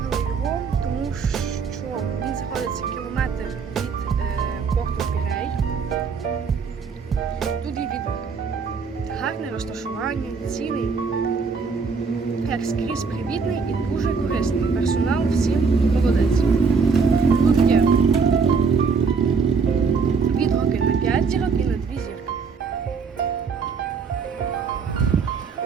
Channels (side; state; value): left; quieter; 5.2 dB